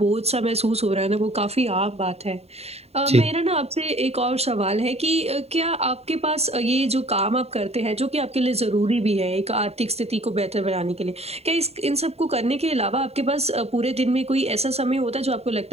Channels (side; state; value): left; late; 0.30 ms